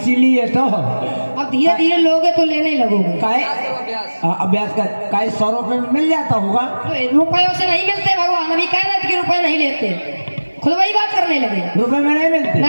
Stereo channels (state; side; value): inverted; both; correlation -1.00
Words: तो अब धीरे धीरे लोगे तो लेने लगोगे। काहे अभ्यास कर, काहे 100 रुपये में मिल जाता होगा। तो रुपयों से नहीं मिलते भगवान, अभी कह रहे थे कि रुपए नहीं लेते, खुद वही बात करने लगे। रुपए में नहीं मिलते?